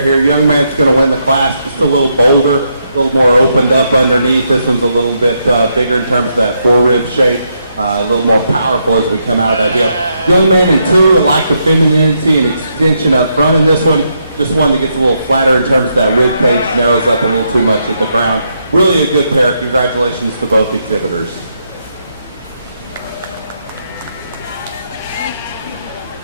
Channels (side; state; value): both; inverted; correlation -0.79